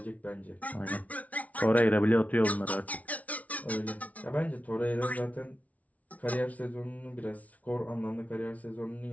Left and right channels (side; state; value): right; late; 0.069 ms